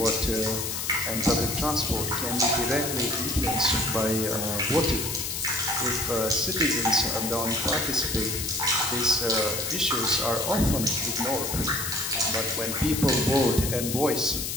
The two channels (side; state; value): left; noise; hiss, 3 dB below the sound